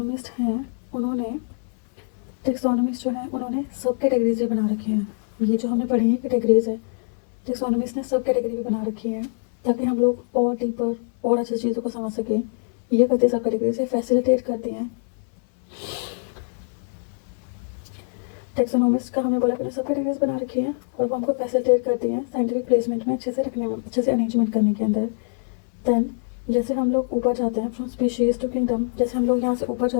उन्होंने सब कैटेगरीज भी बना रखे हैं। ये जो हमने पढ़ी है कैटेगरीज है, टेक्सोनोमिस्ट ने सब कैटेगरी भी बना रखी है ताकि हम लोग और डीपर और अच्छी चीज़ों को समझ सकें। ये करते सब कैटेगरी से फैसिलिटेट करते हैं। टेक्सोनोमिस्ट का हमने बोला कि सब कैटेगरीज बना रखी हैं और वो हमको फैसिलिटेट करती हैं साइंटिफिक प्लेसमेंट में अच्छे से रखने में, अच्छे से अरेंजमेंट करने के अंदर। देन जैसे हम लोग ऊपर जाते हैं फ्रॉम स्पीशीज़ टू किंगडम, जैसे हम लोग यहाँ से ऊपर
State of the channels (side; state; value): right; silent; 60 dB below the other